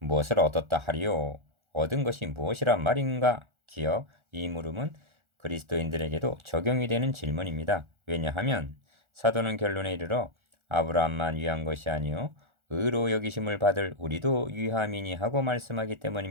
얻었다 하리요? 얻은 것이 무엇이란 말인가? 기억 이 물음은 그리스도인들에게도 적용이 되는 질문입니다. 왜냐하면 사도는 결론에 이르러 아브라함만 위한 것이 아니요 의로 여기심을 받을 우리도 위함이니 하고 말씀하기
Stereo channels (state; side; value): late; left; 1.4 ms